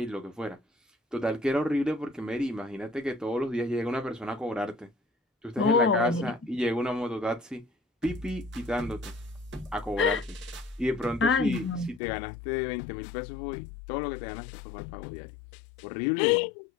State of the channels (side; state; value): right; drops out; at 12.0 s